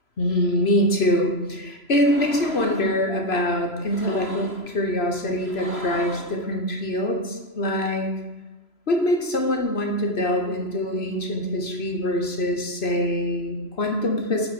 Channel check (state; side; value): late; right; 3.0 ms